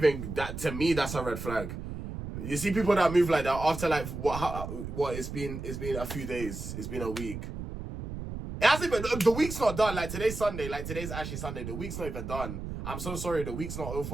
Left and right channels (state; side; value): noise; right; rumble, 7 dB below the sound